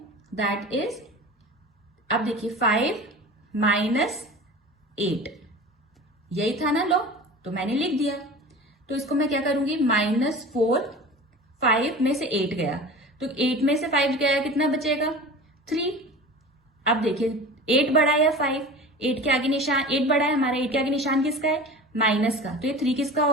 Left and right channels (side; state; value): both; normal; correlation 0.36